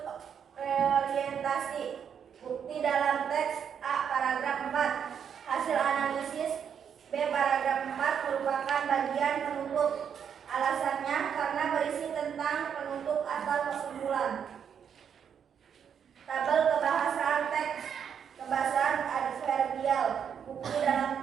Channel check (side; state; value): left; quieter; 7.8 dB